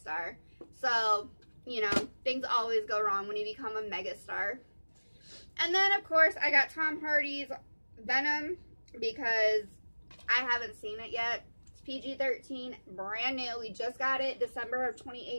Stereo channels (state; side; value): inverted; both; correlation -1.00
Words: So, you know, things always go wrong when you become a megastar. And then, of course, I got Tom Hardy's Venom, because I haven't seen it yet. It's PG-13, brand new. We just got it December of